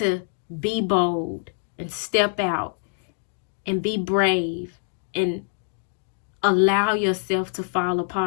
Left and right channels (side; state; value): right; silent; digital silence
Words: be bold and step out and be brave and allow yourself to fall